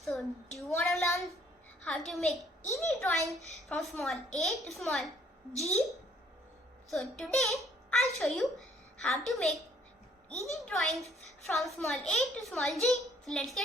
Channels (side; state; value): both; normal; correlation 0.63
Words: So do you want to learn how to make easy drawings from small a to small g? So today I'll show you how to make easy drawings from small a to small g. So let's